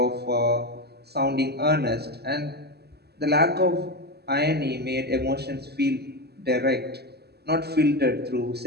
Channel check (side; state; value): left; late; 0.47 ms